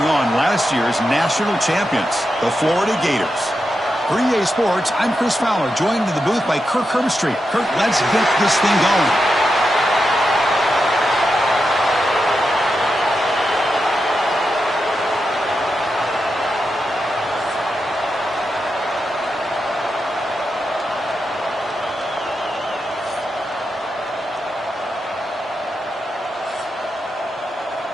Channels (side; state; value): both; normal; correlation 0.87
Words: on last year's national champions, the Florida Gators. For EA Sports, I'm Chris Fowler, joined in the booth by Kirk Herbstreit. Kirk, let's get this thing going.